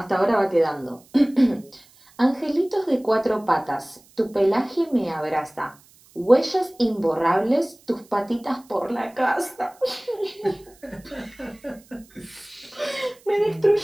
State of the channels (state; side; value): noise; right; hiss, 28 dB below the sound